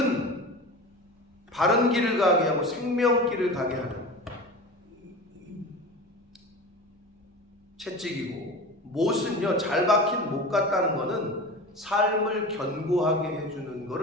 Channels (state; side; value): normal; both; correlation 0.32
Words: 바른 길을 가게 하고 생명길을 가게 하는 채찍이고, 못은요, 잘 박힌 못 같다는 거는 삶을 견고하게 해주는